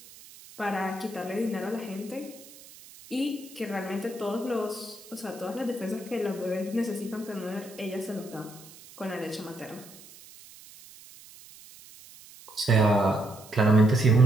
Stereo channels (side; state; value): right; noise; hiss, 20 dB below the sound